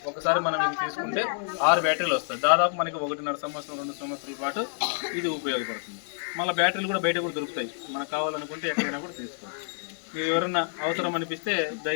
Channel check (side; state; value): right; silent; 59 dB below the other